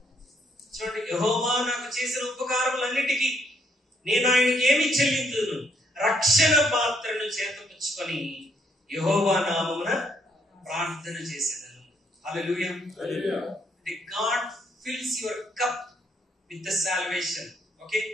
చూడండి, యెహోవా నాకు చేసిన ఉపకారములన్నిటికీ నేను ఆయనకి ఏమి చెల్లించును? రక్షణ పాత్రను చేతపుచ్చుకొని యెహోవా నామమున ప్రార్థన చేసేదను. హల్లెలూయా. God fills your cup with the salvation. Okay,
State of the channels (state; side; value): normal; both; correlation 0.71